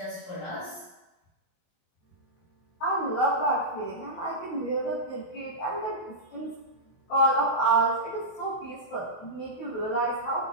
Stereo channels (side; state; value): right; late; 23 ms